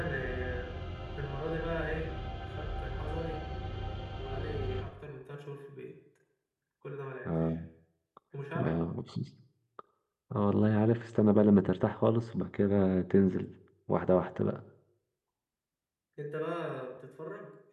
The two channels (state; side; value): identical; both; correlation 1.00